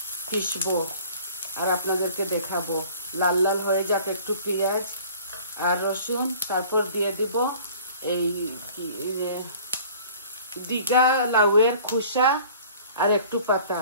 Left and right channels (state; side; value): inverted; both; correlation -0.49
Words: পিসবো আর আপনাদেরকে দেখাবো। লাল লাল হয়ে যাক একটু পেঁয়াজ আর রসুন, তারপর দিয়ে দিব এই দিঘা লাউয়ের খোসা আর একটু পাতা,